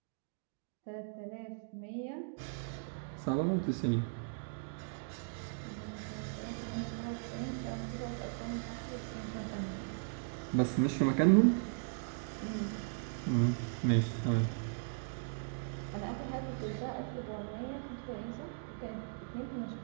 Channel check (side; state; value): left; silent; digital silence